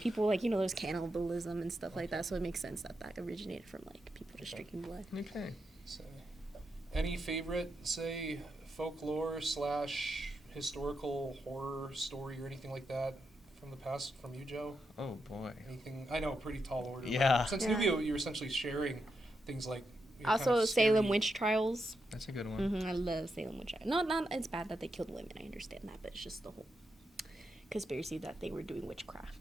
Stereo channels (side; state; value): both; normal; correlation 0.84